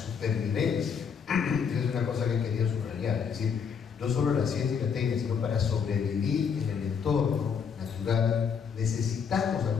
Esa es una cosa que quería subrayar. Es decir, no solo la ciencia y la técnica, sino para sobrevivir en el entorno natural necesitamos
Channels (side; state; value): right; quieter; 6.6 dB